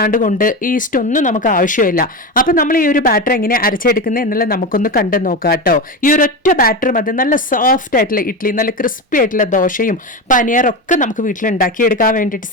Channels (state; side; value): normal; both; correlation 0.20